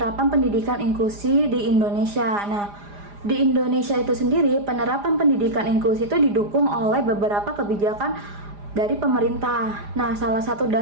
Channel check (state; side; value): late; left; 4.9 ms